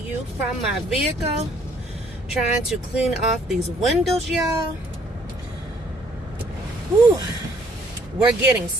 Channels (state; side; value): normal; both; correlation 0.62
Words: from my vehicle, trying to clean off these windows, y'all. Whew. We're getting